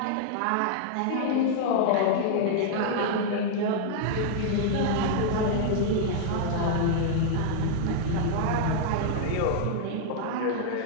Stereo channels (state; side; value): different; both; correlation -0.01